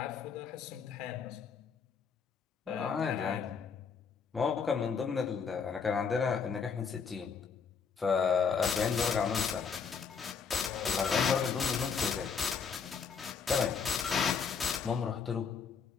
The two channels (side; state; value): right; quieter; 6.1 dB